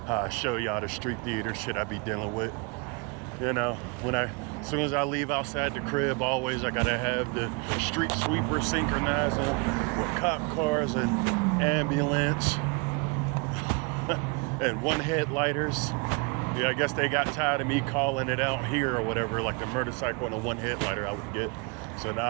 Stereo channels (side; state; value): left; quieter; 31.1 dB